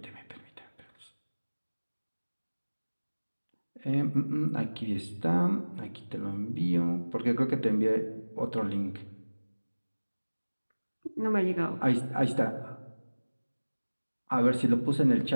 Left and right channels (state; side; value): inverted; both; correlation -1.00